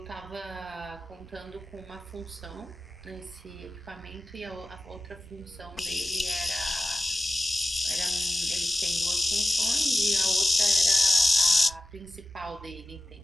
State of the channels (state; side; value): normal; both; correlation 0.94